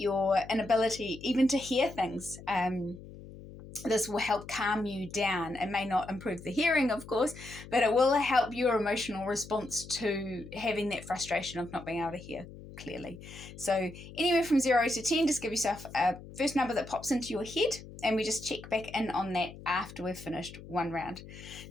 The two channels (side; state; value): left; noise; hum, 15 dB below the sound